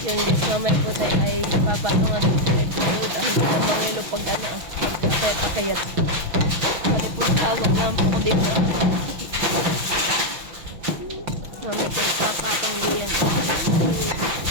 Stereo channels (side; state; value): left; late; 6.2 ms